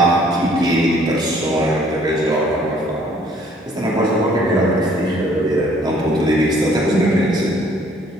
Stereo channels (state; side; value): normal; both; correlation 0.60